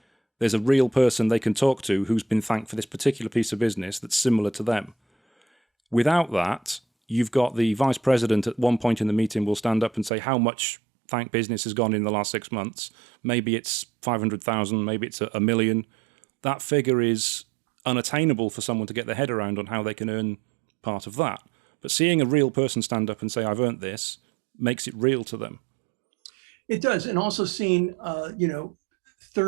There's a real person they can talk to who's been thanked for this particular piece of business that's similar to them. Without that, you've got the vice president at one point in the meeting will stand up and say how much thank business has gone in the last 6 months. Maybe it's 500,000, maybe it's a million. That figure is unattainable for someone to get their head around on how they can earn part of that. But seeing a real person stand up and say, I've earned this, makes it real to them. It does. And also seeing,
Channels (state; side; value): drops out; left; at 10.1 s